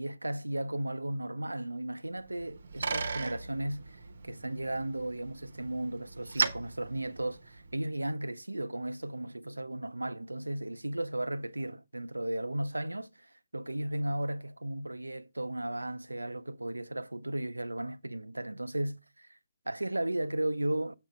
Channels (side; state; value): both; inverted; correlation -0.98